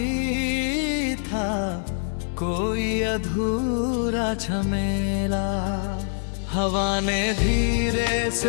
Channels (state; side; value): silent; right; digital silence